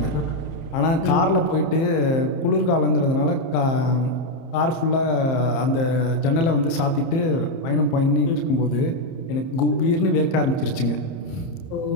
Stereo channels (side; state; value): right; late; 30 ms